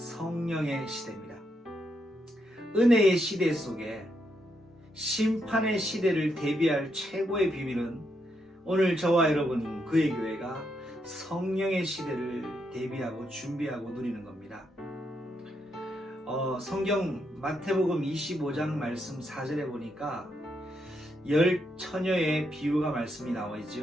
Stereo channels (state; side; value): normal; both; correlation 0.80